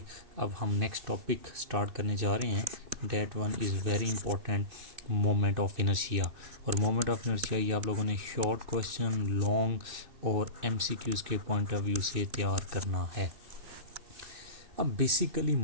अब हम नेक्स्ट टॉपिक स्टार्ट करने जा रहे हैं। That one is very important, moment of inertia. और मोमेंट ऑफ इनर्शिया ये आप लोगों ने शॉर्ट क्वेश्चन, लॉन्ग और एमसीक्यूज़ के पॉइंट ऑफ व्यू से तैयार करना है। अब basically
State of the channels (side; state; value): left; late; 2.6 ms